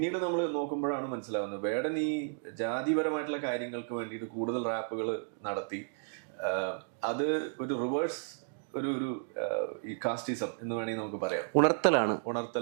നമ്മൾ നോക്കുമ്പോഴാണ് മനസ്സിലാവുന്നത് വേടൻ ഈ ജാതിപരമായിട്ടുള്ള കാര്യങ്ങൾക്ക് വേണ്ടിയിട്ട് കൂടുതൽ റാപ്പുകൾ നടത്തി അത് ഒരു റിവേഴ്സ് ഒരു ഈ കാസ്റ്റിസം എന്ന് വേണമെങ്കിൽ നമുക്ക് പറയാം, ഉണർത്തലാണ്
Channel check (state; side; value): silent; left; digital silence